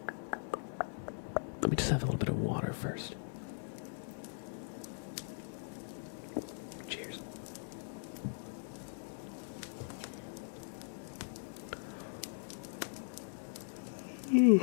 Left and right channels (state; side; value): silent; right; digital silence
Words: Let me just have a little bit of water first. Cheers.